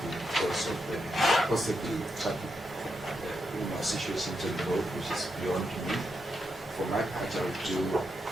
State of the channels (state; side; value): normal; both; correlation 0.84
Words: because of possibly traffic situations on the road, which is beyond me. For my part, I will do